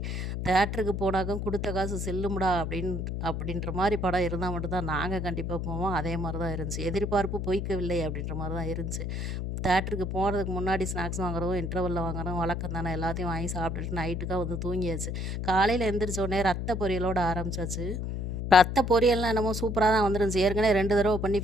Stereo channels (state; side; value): noise; left; hum, 3 dB below the sound